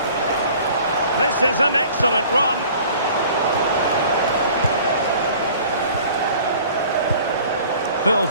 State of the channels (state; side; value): inverted; both; correlation -0.49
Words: This is an excellent run. Phil